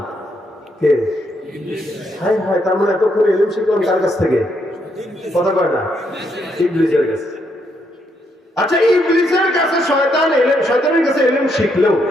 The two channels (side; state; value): both; normal; correlation 0.76